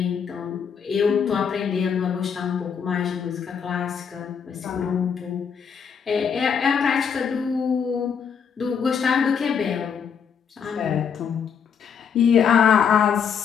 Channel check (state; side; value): quieter; right; 7.0 dB